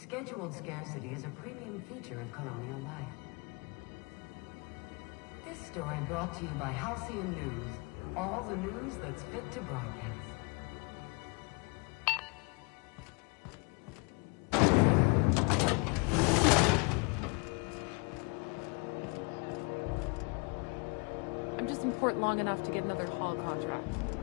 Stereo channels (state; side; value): quieter; right; 32.6 dB